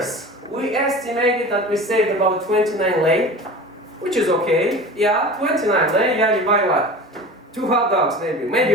we estimated that we saved about 29 lei, which is okay. Yeah, 29 lei, yeah, you buy what? 2 hot dogs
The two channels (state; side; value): normal; both; correlation 0.36